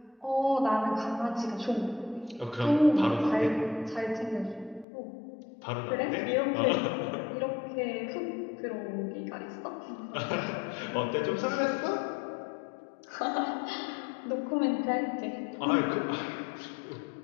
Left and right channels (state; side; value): drops out; right; at 4.9 s